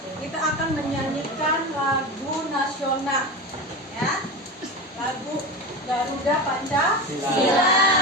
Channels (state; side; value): normal; both; correlation 0.24